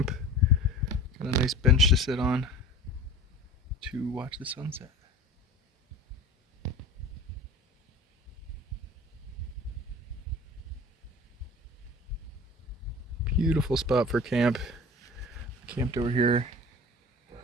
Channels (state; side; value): normal; both; correlation 0.39